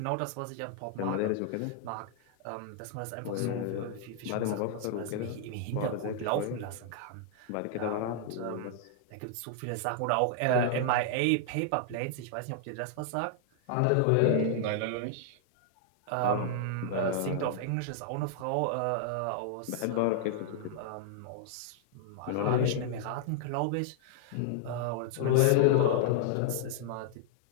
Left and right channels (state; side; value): different; both; correlation -0.01